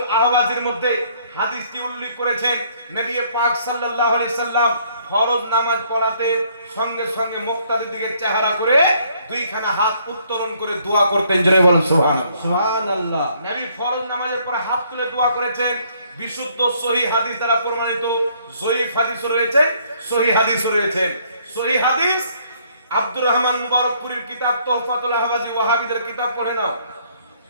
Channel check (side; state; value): both; inverted; correlation -0.65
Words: আহওয়াজের মধ্যে হাদিসটি উল্লেখ করেছেন। নবী পাক সাল্লাল্লাহু আলাইহি সাল্লাম ফরজ নামাজ পড়াতে সঙ্গে সঙ্গে মুক্তাদির দিকে চেহারা করে দুইখানা হাত উত্তোলন করে দোয়া করতেন। জোরে বলেন সুবহানাল্লাহ। সুবহানাল্লাহ। নবী ফরজ নামাজের পরে হাত তুলে দোয়া করেছেন। বিশুদ্ধ সহিহ হাদিস দ্বারা প্রমাণিত, জয়ীফ হাদিসও রয়েছে, সহিহ হাদিসও রয়েছে। সহিহ হাদিস আব্দুর রহমান মুবারকপুরীর কিতাব তোহফাতুল আহওয়াজি, ওয়াহাবীদের কিতাব পড়ে নাও।